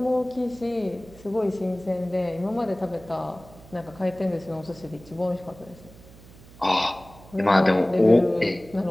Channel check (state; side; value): noise; right; hum, 21 dB below the sound